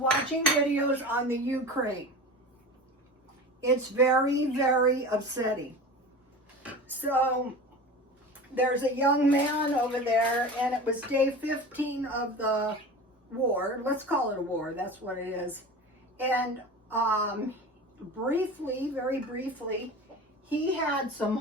videos on the Ukraine. It's very, very upsetting. So there's a young man over there, and it was day 15 of the war. Let's call it a war. That's what it is. And briefly, very briefly, he had some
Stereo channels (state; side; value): normal; both; correlation 0.33